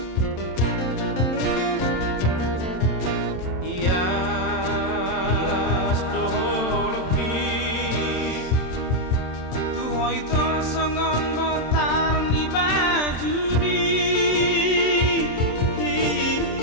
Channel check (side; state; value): right; late; 27 ms